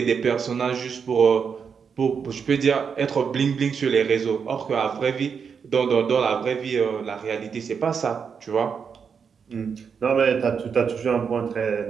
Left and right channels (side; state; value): left; quieter; 6.4 dB